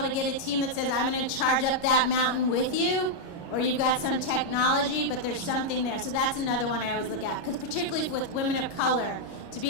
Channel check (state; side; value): late; right; 29 ms